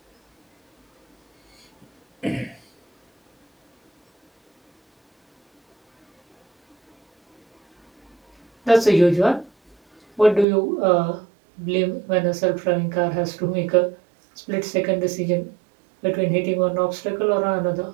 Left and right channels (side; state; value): left; drops out; at 10.5 s